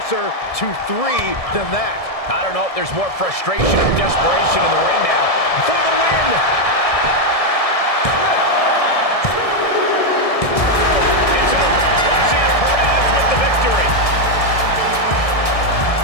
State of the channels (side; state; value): right; late; 1.7 ms